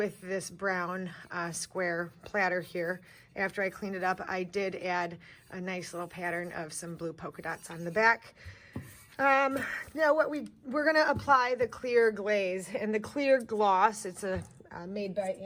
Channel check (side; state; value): both; identical; correlation 1.00